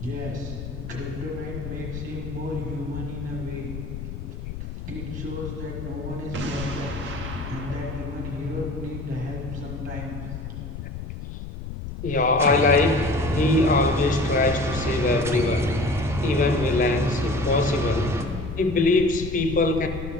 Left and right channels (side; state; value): left; noise; rumble, 8 dB below the sound